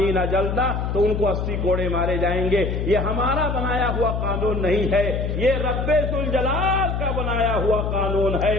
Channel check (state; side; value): noise; left; hum, 1 dB below the sound